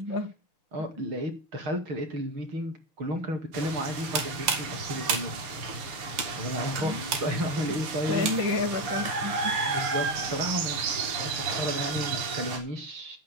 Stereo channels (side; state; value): left; late; 6.6 ms